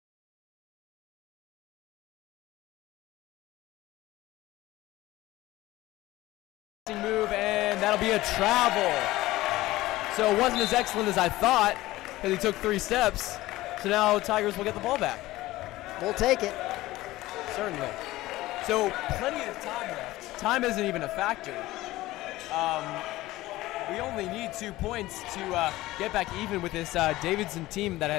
Move, and that'll be a travel. So it wasn't as excellent as I thought because he took 3 steps. So now Tigers will get the ball back. We'll take it. Certainly. So plenty of time left. Time isn't even a factor. We only need 2 points to get back even with this Davidson team that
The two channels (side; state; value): right; quieter; 17.5 dB